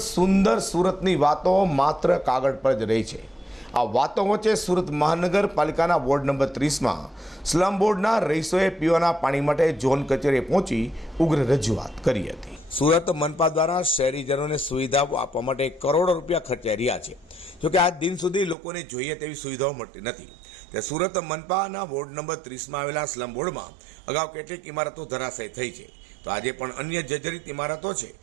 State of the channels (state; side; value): drops out; left; at 18.6 s